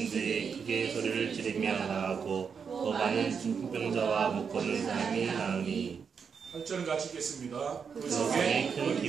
크게 소리를 지르며 나가고 또 많은 중풍병자와 못 걷는 사람이 나으니 8절은 같이 읽겠습니다. 그 속에 큰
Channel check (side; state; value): left; quieter; 6.3 dB